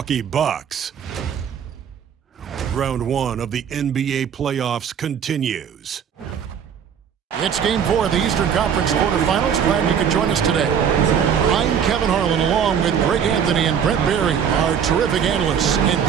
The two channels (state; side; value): quieter; left; 7.9 dB